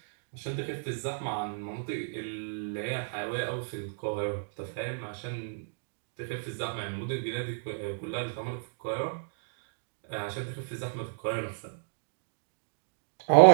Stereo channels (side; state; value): left; silent; digital silence